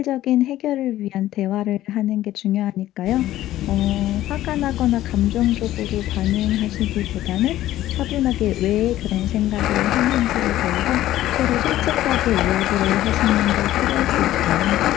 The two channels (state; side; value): quieter; right; 14.2 dB